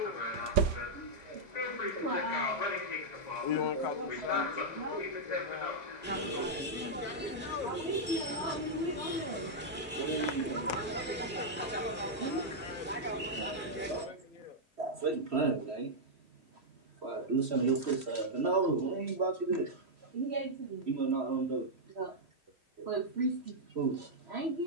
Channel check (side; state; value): both; normal; correlation -0.06